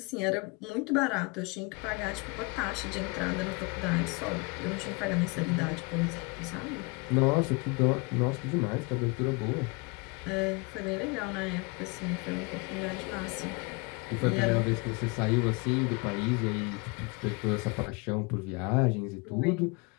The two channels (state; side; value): quieter; right; 28.7 dB